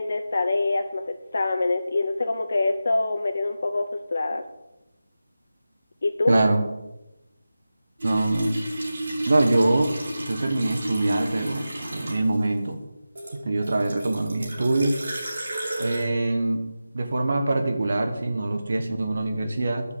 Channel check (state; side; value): inverted; both; correlation -0.93